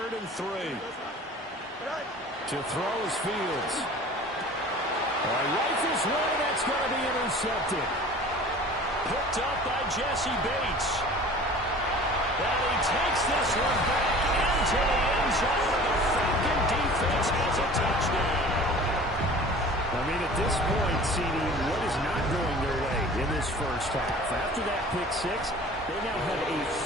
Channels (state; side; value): normal; both; correlation 0.43